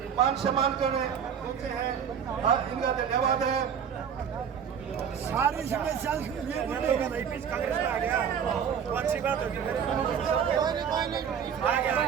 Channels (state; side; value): quieter; left; 7.8 dB